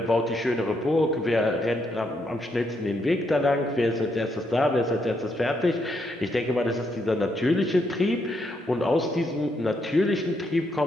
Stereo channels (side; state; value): both; normal; correlation 0.77